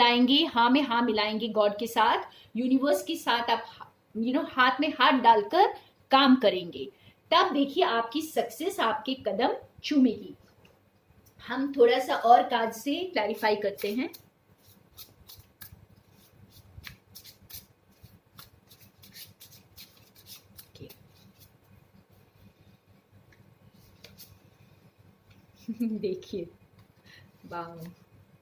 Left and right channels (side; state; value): both; identical; correlation 1.00